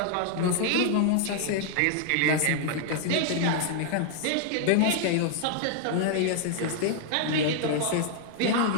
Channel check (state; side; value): different; both; correlation 0.00